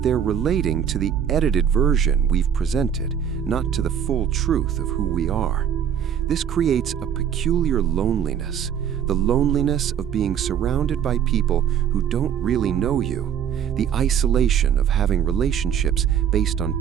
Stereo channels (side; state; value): left; quieter; 8.8 dB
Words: they're relating to the edited version we've presented, not to the full truth of who we are. This creates a peculiar loneliness, the loneliness of being surrounded by people who don't really know you, the isolation of having relationships based on